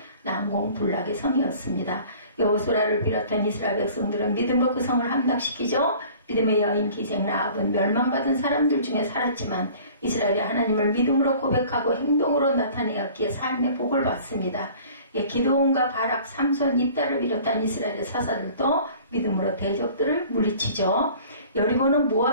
난공불락의 성이었습니다. 여호수아를 비롯한 이스라엘 백성들은 믿음으로 그 성을 함락시키죠. 믿음의 여인 기생 라합은 멸망받은 사람들 중에 살았지만 이스라엘이 하나님을 믿음으로 고백하고 행동으로 나타내었기에 삶의 복을 받습니다. 기드온과 바락, 삼손, 입다를 비롯한 이스라엘의 사사들도 믿음으로 대적들을 물리치죠. 여리고는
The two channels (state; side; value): inverted; both; correlation -0.48